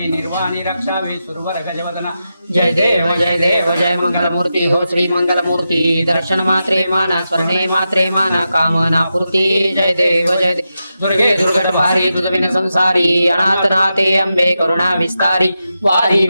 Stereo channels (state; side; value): inverted; both; correlation -0.89